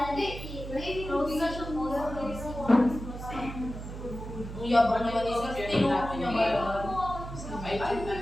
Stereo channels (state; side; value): noise; right; hum, 9 dB below the sound